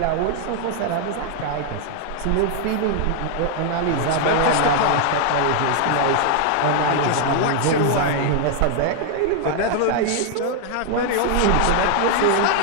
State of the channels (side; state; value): both; different; correlation 0.00